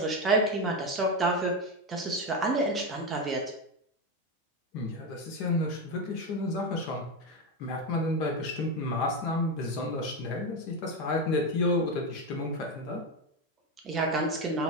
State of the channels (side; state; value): both; normal; correlation 0.13